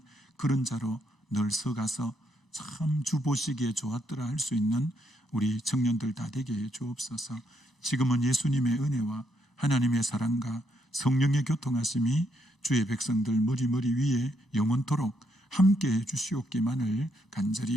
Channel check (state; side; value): normal; both; correlation 0.76